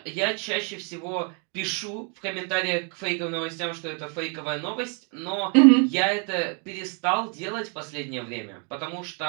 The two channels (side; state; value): left; quieter; 37.8 dB